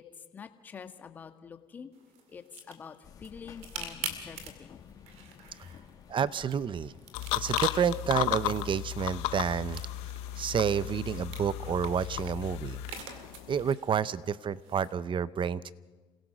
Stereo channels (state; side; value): quieter; left; 3.1 dB